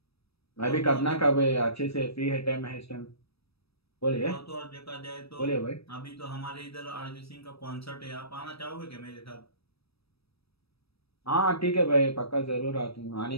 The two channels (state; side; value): late; right; 0.77 ms